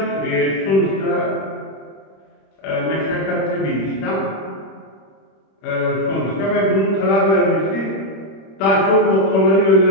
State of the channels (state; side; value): late; right; 26 ms